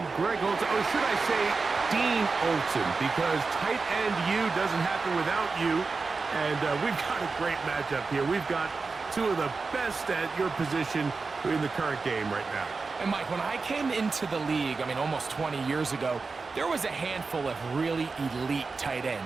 Greg Olson. Or should I say Dean Olson, because tight end U doesn't happen without you. And we've got a great matchup here. We've got two of the best at your position in the current game right now. And Mike, when I came into the league, almost 20 years ago, there was a handful of really elite tight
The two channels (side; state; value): left; quieter; 4.3 dB